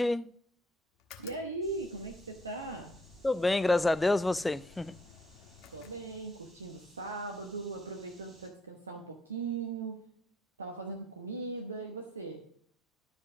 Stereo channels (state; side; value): normal; both; correlation 0.68